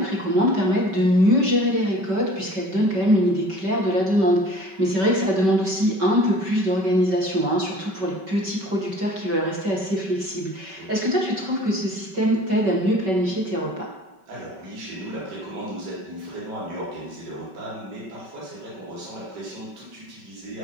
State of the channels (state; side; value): late; left; 5.3 ms